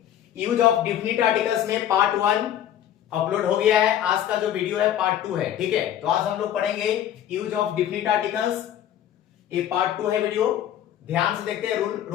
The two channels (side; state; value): right; quieter; 11.0 dB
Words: यूज ऑफ डिफिनिट आर्टिकल्स में पार्ट 1 अपलोड हो गया है। आज का जो वीडियो है पार्ट 2 है, ठीक है। तो आज हम लोग पढ़ेंगे यूज ऑफ डिफिनिट आर्टिकल्स, ये पार्ट 2 है वीडियो। ध्यान से देखते हैं,